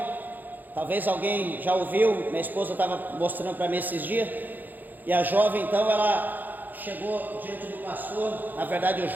talvez alguém já ouviu, minha esposa estava mostrando para mim esses dias, e a jovem então ela chegou diante do pastor, na verdade o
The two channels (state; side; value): late; left; 0.085 ms